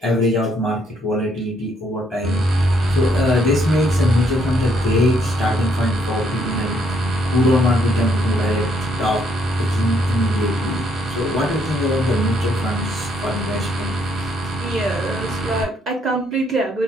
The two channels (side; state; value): both; normal; correlation 0.71